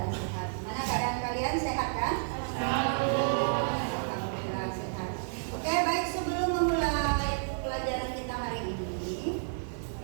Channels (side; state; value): left; silent; 57 dB below the other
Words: sehat. Mana keadaan kalian sehat kan? Alhamdulillah sehat. Oke, baik, sebelum memulai pelajaran kita hari ini,